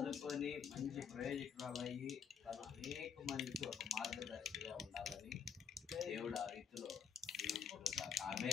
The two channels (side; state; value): right; quieter; 7.1 dB